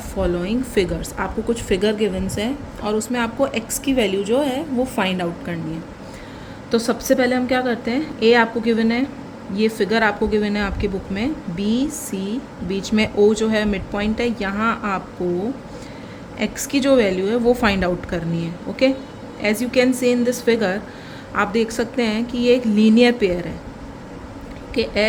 following figures. आपको कुछ figure गिवन्स है और उसमें आपको x की वैल्यू जो है वो फाइंड आउट करनी है. तो सबसे पहले हम क्या करते हैं, a आपको गिवन है, ये फिगर आपको गिवन है आपकी बुक में, b c बीच में o जो है मिड पॉइंट है, यहाँ आपको x की जो वैल्यू है वो फाइंड आउट करनी है. Okay, as you can see in this figure आप देख सकते हैं कि ये एक लीनियर पेयर है कि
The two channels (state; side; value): identical; both; correlation 1.00